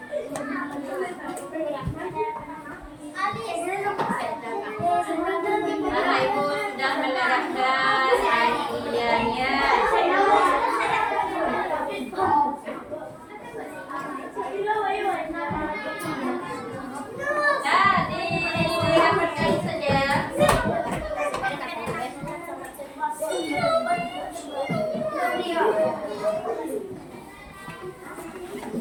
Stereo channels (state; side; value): identical; both; correlation 1.00